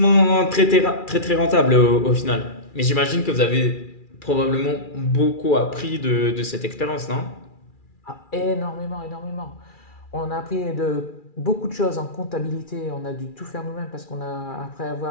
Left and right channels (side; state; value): right; late; 2.4 ms